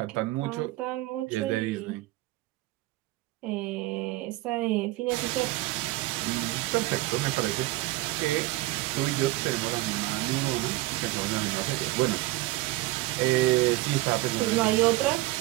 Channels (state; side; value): quieter; left; 18.6 dB